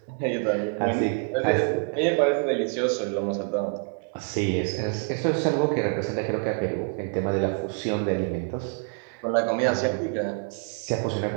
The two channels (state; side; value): quieter; left; 36.6 dB